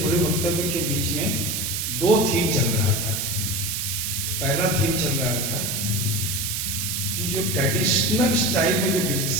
वक्तव्य के बीच में दो थीम चल रहा था। पहला थीम चल रहा था कि जो ट्रेडिशनल स्टाइल में जो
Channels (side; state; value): right; noise; hiss, 1 dB below the sound